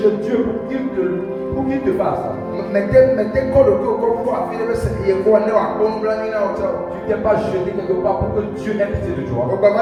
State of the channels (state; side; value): identical; both; correlation 1.00